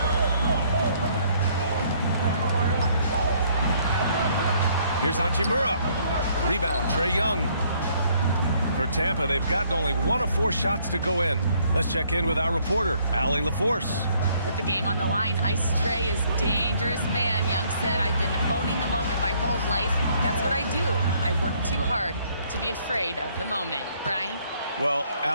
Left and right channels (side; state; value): both; inverted; correlation -0.65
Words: Here's Hachimura. Rebound, Trae Young. For Tampa, they've gotten only 1 of 4 shots to go in. Let's check in with our reporter, Allie LaForce. With the game on the line, Ice Trae is dangerous man. Young said, I've been owning the moment my whole life. That's what I do. I work too hard to be afraid of the moment. Brian? Well,